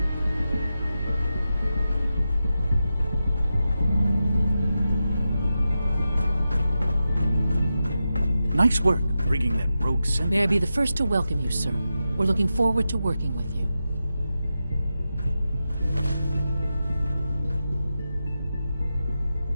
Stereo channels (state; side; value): inverted; both; correlation -0.90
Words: Nice work bringing that rogue synth. May I be the first to welcome you, sir. We're looking forward to working with you.